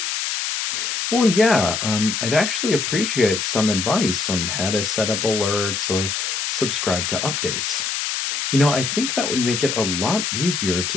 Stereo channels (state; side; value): noise; left; hiss, 2 dB below the sound